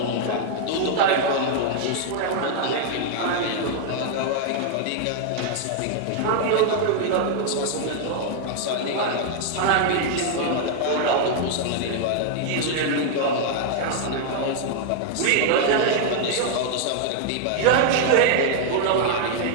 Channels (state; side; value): different; both; correlation 0.00